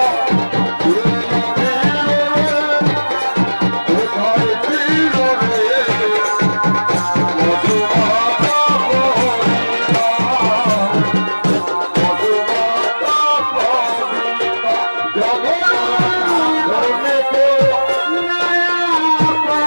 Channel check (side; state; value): both; inverted; correlation -1.00